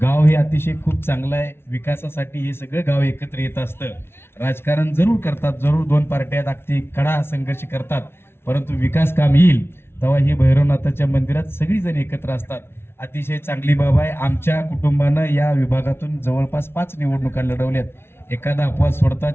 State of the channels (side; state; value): right; late; 0.12 ms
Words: हे अतिशय खूप चांगलं आहे. विकासासाठी हे सगळं गाव एकत्र येत असतं. राजकारण जरूर करतात, जरूर दोन पार्ट्या अगदी कडा संघर्ष करतात, परंतु विकास काम येईल तेव्हा ही भैरवनाथाच्या मंदिरात सगळीजण एकत्र असतात. अतिशय चांगली बाब आहे. आमच्या कुटुंबानं या विभागातून जवळपास 5 निवडणुका लढवल्यात. एखादा अपवाद सोडता